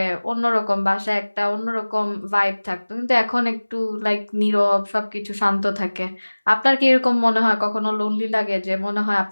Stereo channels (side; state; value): both; inverted; correlation -1.00